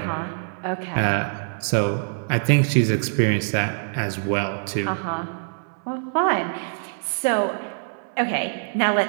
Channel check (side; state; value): left; silent; 62 dB below the other